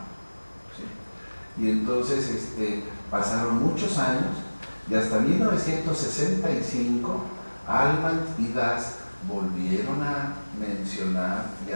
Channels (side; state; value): both; inverted; correlation -1.00